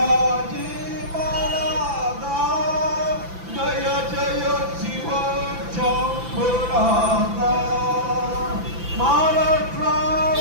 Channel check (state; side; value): late; left; 5.9 ms